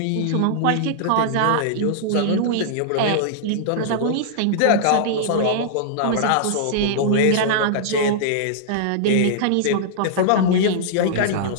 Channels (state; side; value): different; both; correlation -0.01